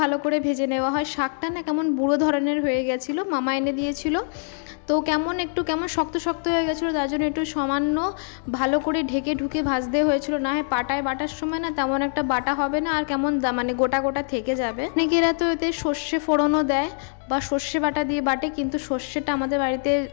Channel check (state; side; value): silent; right; digital silence